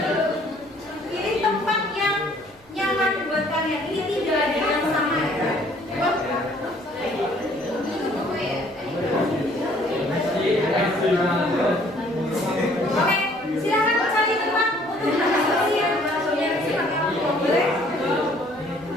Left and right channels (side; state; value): right; noise; rumble, 28 dB below the sound